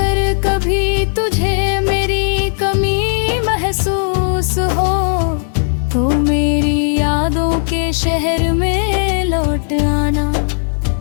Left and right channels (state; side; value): silent; right; digital silence